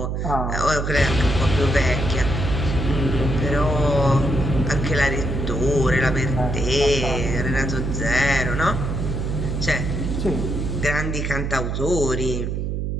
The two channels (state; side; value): noise; right; hum, 2 dB below the sound